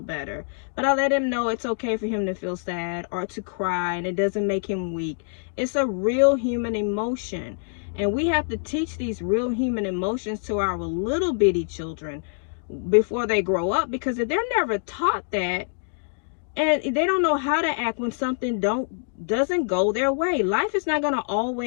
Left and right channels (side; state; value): right; silent; digital silence